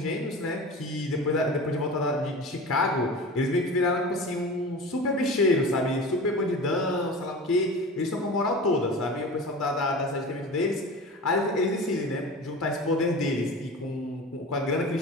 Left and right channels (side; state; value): both; normal; correlation 0.33